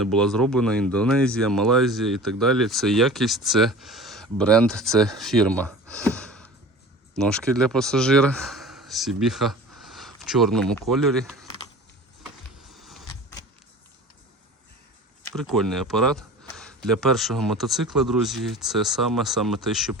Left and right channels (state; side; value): normal; both; correlation 0.39